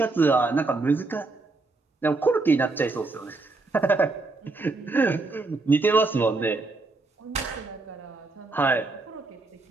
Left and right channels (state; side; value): quieter; left; 3.5 dB